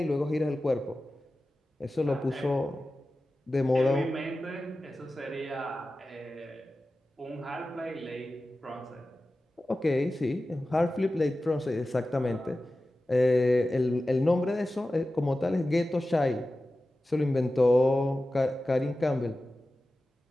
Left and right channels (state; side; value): normal; both; correlation 0.95